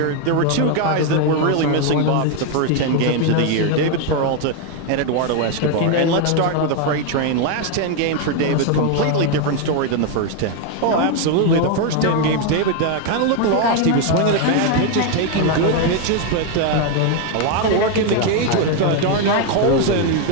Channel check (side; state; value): both; different; correlation 0.01